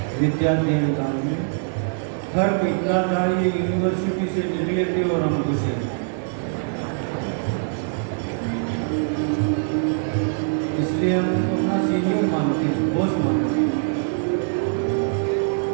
विद्याध्ययन काल में। फर्क इतना था, ये यूनिवर्सिटी से निकले थे और हम घुसे। इसलिए हम उनको अपना सीनियर मानते हैं, बॉस मानते हैं।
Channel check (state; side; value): silent; left; 63 dB below the other